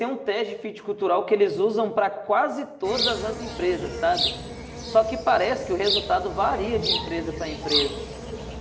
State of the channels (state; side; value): identical; both; correlation 1.00